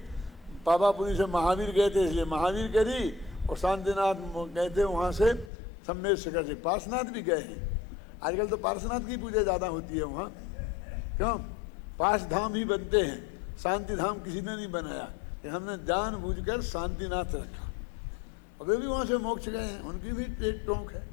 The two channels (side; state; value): right; drops out; at 5.5 s